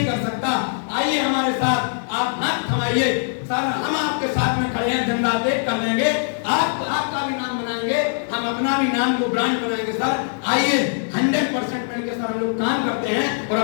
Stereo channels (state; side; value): silent; right; digital silence